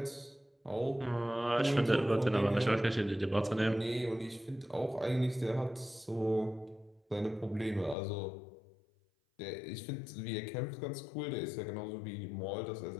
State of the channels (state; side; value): drops out; right; at 8.0 s